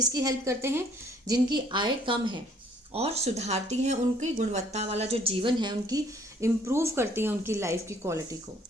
हेल्प करते हैं, जिनकी आय कम है, और सुधारती हैं उनकी गुणवत्ता वाला जो जीवन है, उनकी इम्प्रूव करती हैं उनकी लाइफ की क्वालिटी को।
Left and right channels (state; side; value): normal; both; correlation 0.61